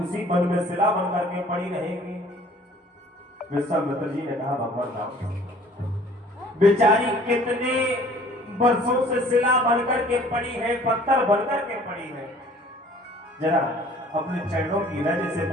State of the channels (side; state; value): both; normal; correlation 0.52